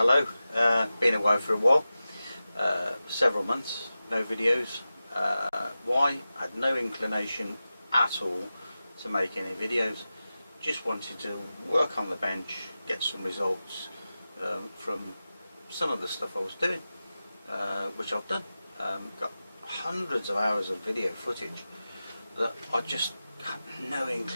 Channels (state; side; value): inverted; both; correlation -0.94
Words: Been away for a while, several months, no videos. Why? Had no inclination at all to make any videos. Just wanted to work on the bench, get some results from some of the stuff I was doing, which I've done. Got hundreds of hours of video footage that I just had no